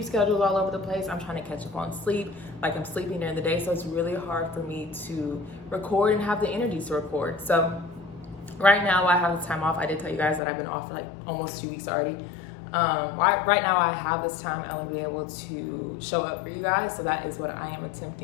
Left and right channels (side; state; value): right; drops out; at 10.4 s